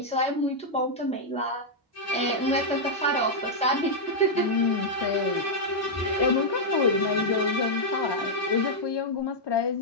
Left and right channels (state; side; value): normal; both; correlation -0.04